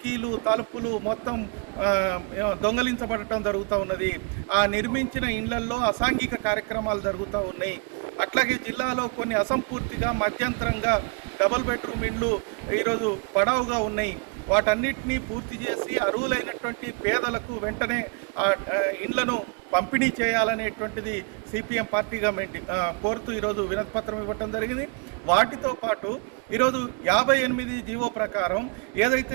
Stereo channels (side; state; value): left; quieter; 35.4 dB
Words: తలుపులు మొత్తం దొంగలించబడటం జరుగుతూ ఉన్నది। ఆ నిర్మించిన ఇండ్లల్లో అసాంఘిక కార్యక్రమాలు జరుగుతూ ఉన్నాయి। అట్లాగే జిల్లాలో కొన్ని అసంపూర్తిగా మధ్యంతరంగా డబుల్ బెడ్రూమ్ ఇండ్లు ఈరోజు పడవుగా ఉన్నాయి। వాటన్నిటినీ పూర్తి చేసి అర్హులైనటువంటి పేదలకు వెంటనే ఆ ఇండ్లను పంపిణీ చేయాలనేటువంటిది సిపిఎం పార్టీగా కోరుతూ ఈరోజు వినతిపత్రం ఇవ్వటం జరిగింది। వాటితో పాటు ఈరోజు 58 జీవో ప్రకారం